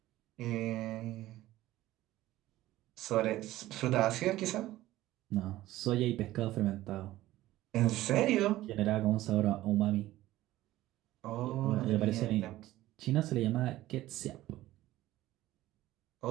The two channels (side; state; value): left; quieter; 15.8 dB